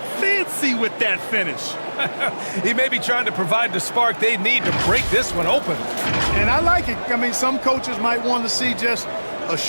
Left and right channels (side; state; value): both; inverted; correlation -1.00